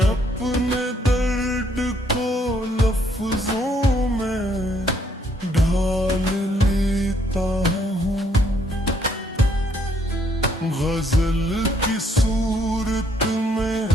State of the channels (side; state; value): both; normal; correlation 0.69